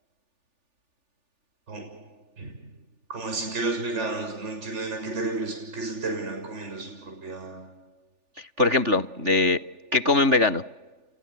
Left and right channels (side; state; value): left; late; 3.4 ms